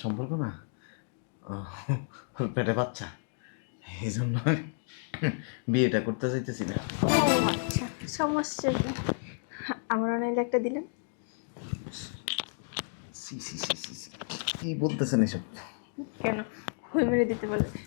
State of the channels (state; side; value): silent; right; digital silence